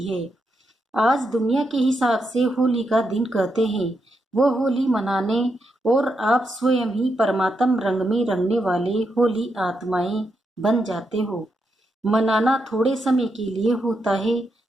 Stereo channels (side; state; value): both; normal; correlation 0.83